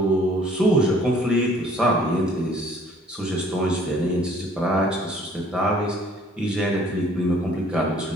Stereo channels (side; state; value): both; normal; correlation 0.57